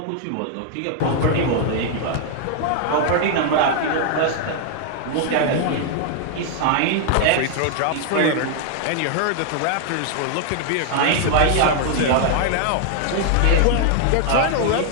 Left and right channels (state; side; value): different; both; correlation 0.00